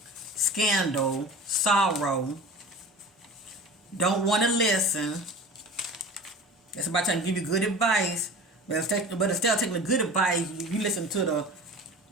scandal, sorrow. Don't want to listen. That's about trying to give you good advice. But instead of taking the good advice, you listen to the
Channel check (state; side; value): normal; both; correlation 0.36